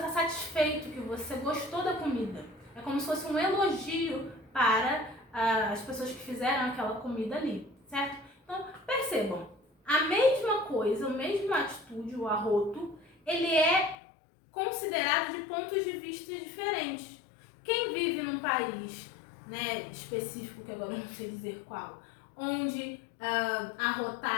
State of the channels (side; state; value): right; drops out; at 14.0 s